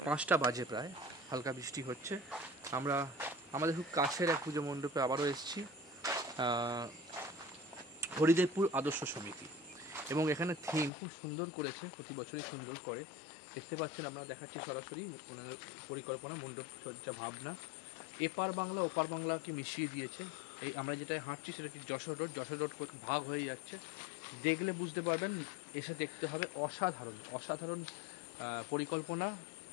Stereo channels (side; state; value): right; drops out; at 10.9 s